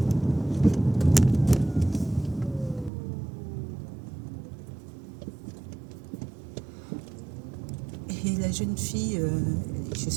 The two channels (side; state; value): left; drops out; at 2.9 s